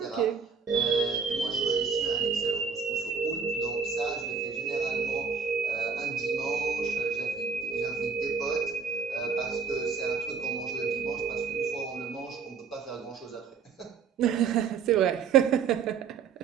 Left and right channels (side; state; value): left; quieter; 6.0 dB